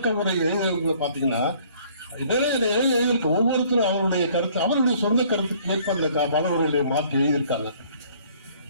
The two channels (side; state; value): both; inverted; correlation -0.58